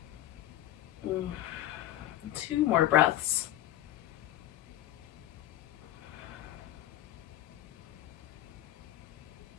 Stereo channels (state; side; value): quieter; right; 13.7 dB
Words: Two more breaths.